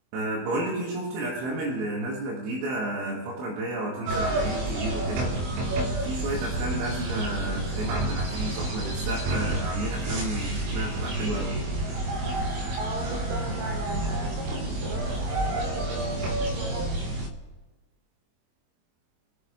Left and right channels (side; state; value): left; late; 24 ms